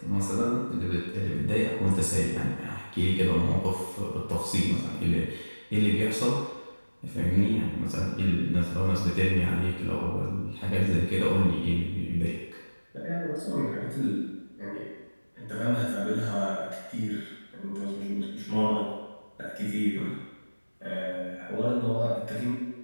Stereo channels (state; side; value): inverted; both; correlation -1.00